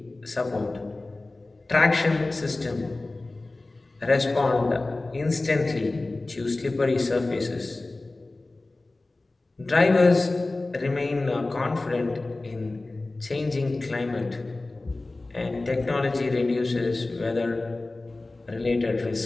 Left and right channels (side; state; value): right; quieter; 3.1 dB